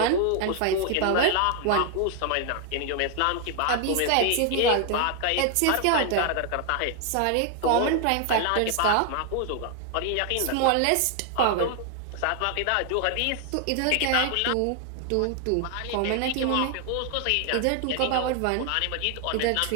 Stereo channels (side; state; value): both; different; correlation 0.00